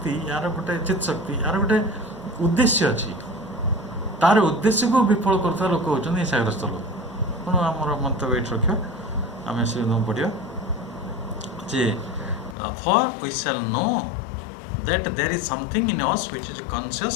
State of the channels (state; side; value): drops out; right; at 12.6 s